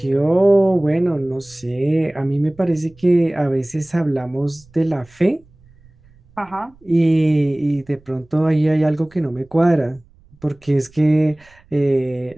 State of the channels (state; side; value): noise; right; rumble, 29 dB below the sound